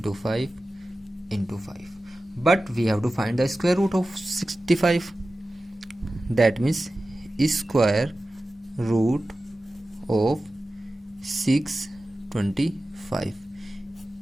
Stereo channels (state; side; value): normal; both; correlation 0.95